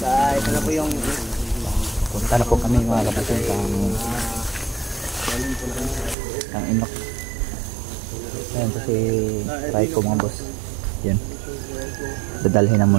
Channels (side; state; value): left; drops out; at 6.2 s